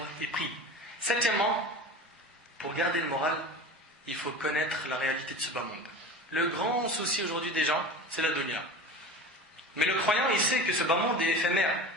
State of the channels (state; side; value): normal; both; correlation 0.34